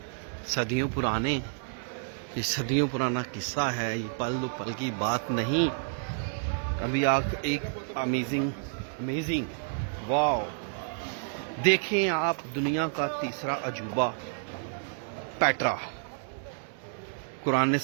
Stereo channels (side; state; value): left; silent; digital silence